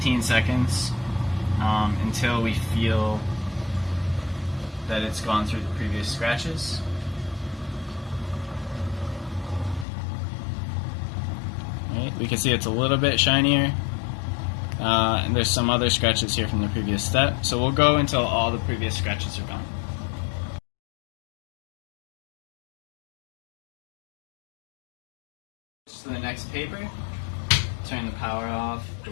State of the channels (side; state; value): right; drops out; at 9.9 s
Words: seconds until we feel that it's gone through the previous scratches. Right, we can see it's a little bit shinier. And there's some other scratches here from the previous step. So we'll go until all the previous scratches are gone. To the next paper, turn the power off, the